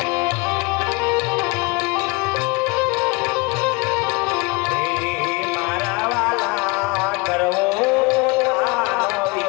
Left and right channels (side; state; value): right; quieter; 26.4 dB